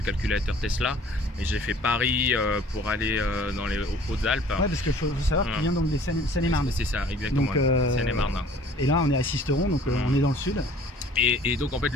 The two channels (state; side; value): normal; both; correlation 0.52